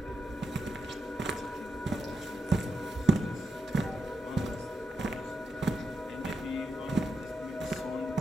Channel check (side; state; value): both; normal; correlation 0.86